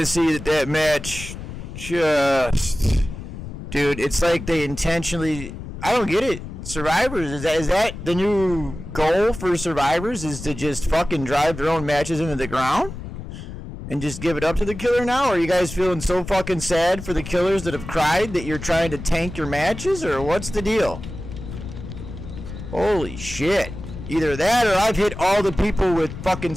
of see that match just... Dude, it's like they intentionally... I don't get it. Survivors, is that the new goal for Survivors? Is to just fucking drive their own matches into the ground? And just give it up to the killer now? Or are you guys feeling so fucking sad for the killers that have cried that you're trying to tank your matches? Or what's the deal? Holy shit. Either that or I've hit all the people with fucking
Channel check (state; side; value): noise; left; rumble, 10 dB below the sound